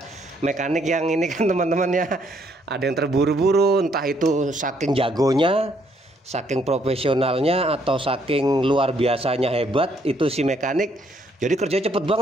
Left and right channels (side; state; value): both; normal; correlation 0.69